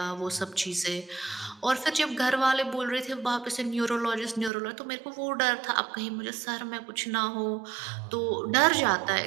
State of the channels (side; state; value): left; drops out; at 4.5 s